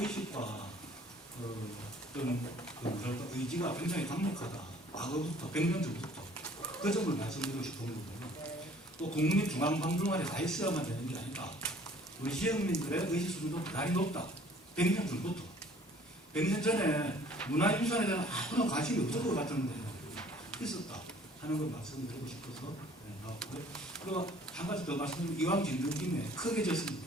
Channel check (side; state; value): both; normal; correlation 0.55